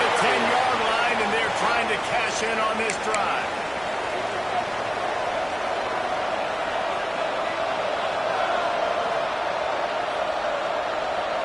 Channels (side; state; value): both; identical; correlation 1.00